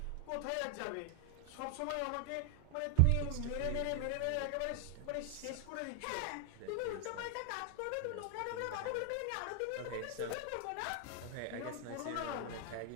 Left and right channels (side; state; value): both; different; correlation 0.00